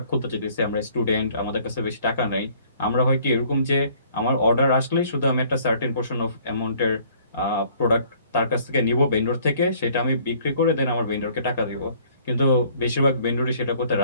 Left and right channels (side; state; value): both; inverted; correlation -0.58